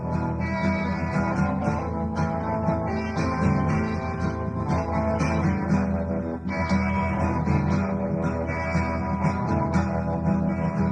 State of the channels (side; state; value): both; identical; correlation 1.00